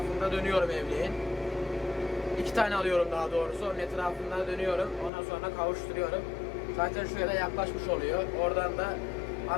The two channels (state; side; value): drops out; right; at 5.1 s